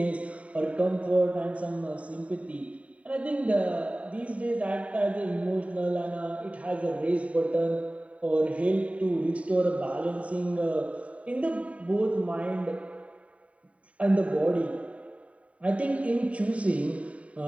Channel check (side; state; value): left; late; 0.066 ms